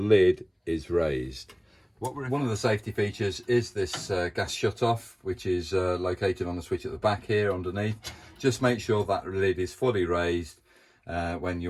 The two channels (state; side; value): identical; both; correlation 1.00